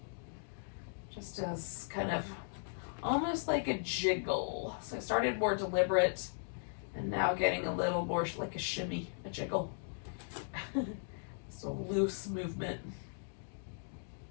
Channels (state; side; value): silent; right; digital silence